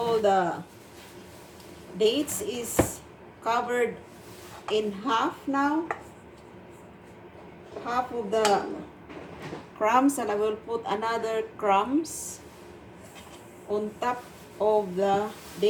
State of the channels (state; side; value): identical; both; correlation 1.00